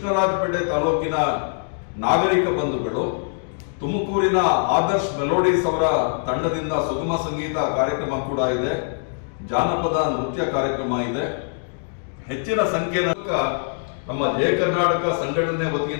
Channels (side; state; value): right; silent; digital silence